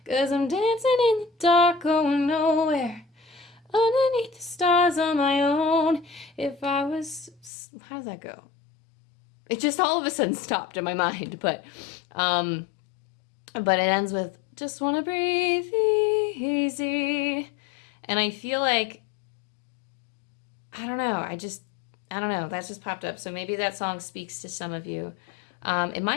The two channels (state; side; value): drops out; right; at 7.5 s